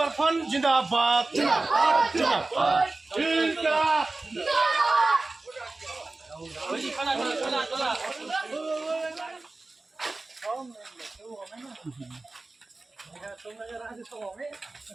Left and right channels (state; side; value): quieter; left; 3.3 dB